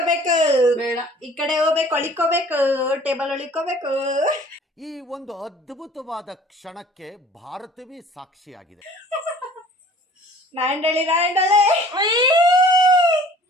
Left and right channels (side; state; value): both; normal; correlation 0.50